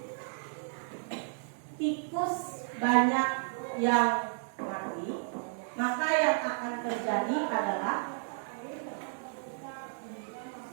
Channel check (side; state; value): left; silent; 56 dB below the other